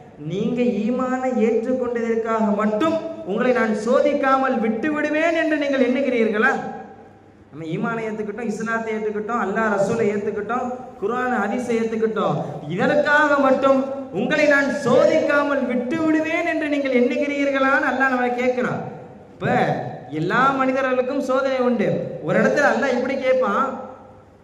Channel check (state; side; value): identical; both; correlation 1.00